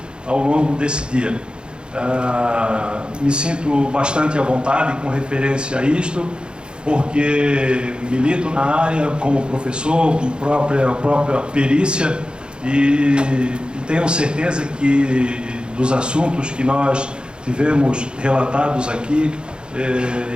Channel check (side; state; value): left; late; 0.051 ms